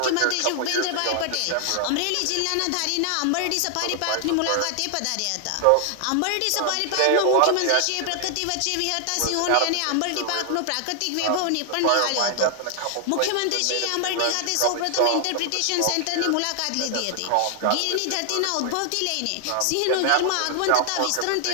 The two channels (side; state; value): both; different; correlation 0.00